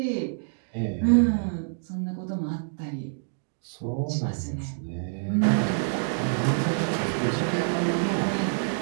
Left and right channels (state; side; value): silent; left; digital silence